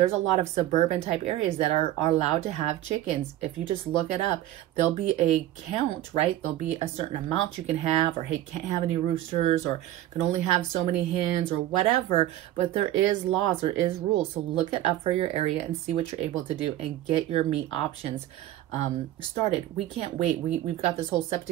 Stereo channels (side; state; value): left; quieter; 14.1 dB